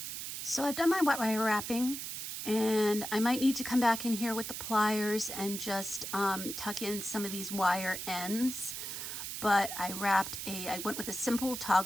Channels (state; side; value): noise; right; hiss, 6 dB below the sound